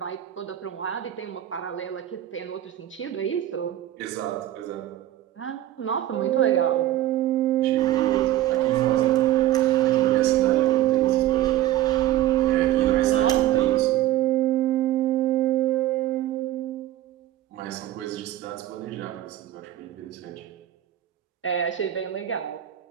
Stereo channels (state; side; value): quieter; left; 13.6 dB